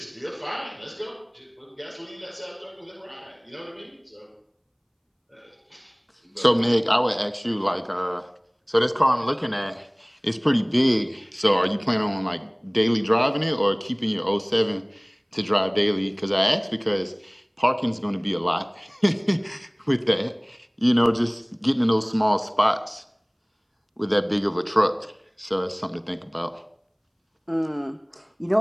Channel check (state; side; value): identical; both; correlation 1.00